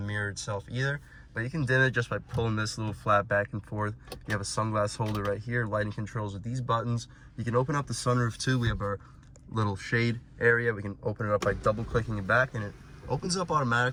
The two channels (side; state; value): both; identical; correlation 1.00